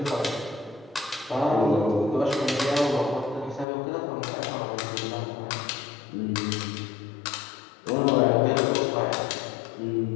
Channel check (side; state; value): right; drops out; at 3.7 s